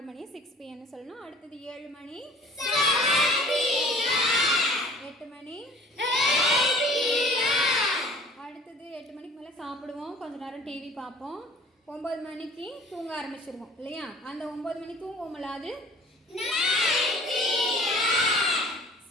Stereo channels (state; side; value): normal; both; correlation 0.49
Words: மணி 6 PM சொல்லணும். அடுத்தது 7 மணி. 8 மணி. அடுத்தது 8 மணிக்கு மேலே சாப்பிடுவோம், கொஞ்ச நேரம் டிவி பார்ப்போம். 9 மணிக்கு தூங்க ஆரம்பிச்சிருவோம் இல்லையா, அந்த 9 மணி தூங்குவோம்ல, அது